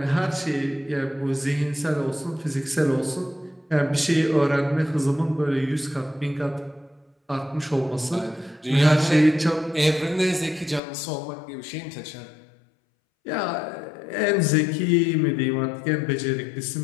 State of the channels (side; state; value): right; drops out; at 10.8 s